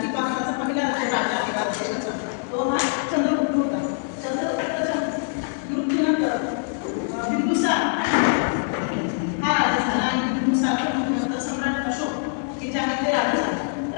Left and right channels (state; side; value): silent; right; 63 dB below the other